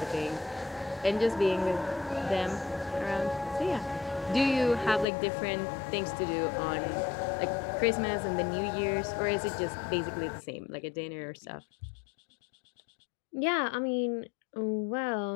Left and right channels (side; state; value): right; drops out; at 5.1 s